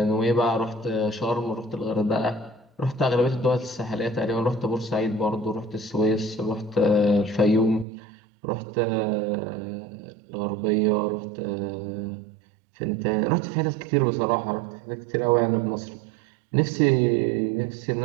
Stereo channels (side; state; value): left; drops out; at 7.9 s